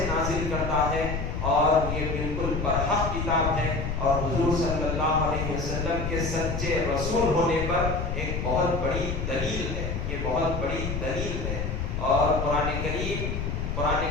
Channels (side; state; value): left; noise; rumble, 3 dB below the sound